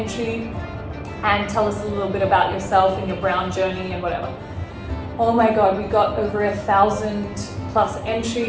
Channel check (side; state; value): both; identical; correlation 1.00